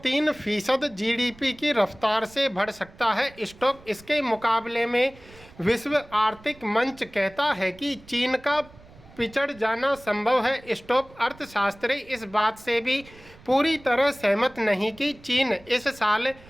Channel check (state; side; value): noise; right; rumble, 23 dB below the sound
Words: जीडीपी की रफ्तार से बढ़ सकता है। इसके मुकाबले में विश्व आर्थिक मंच कहता है कि चीन का पिछड़ जाना संभव है। अर्थशास्त्री इस बात से भी पूरी तरह सहमत नहीं कि चीन इस साल